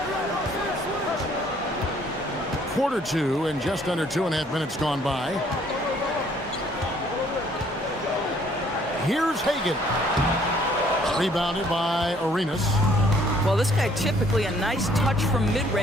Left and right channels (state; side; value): normal; both; correlation 0.61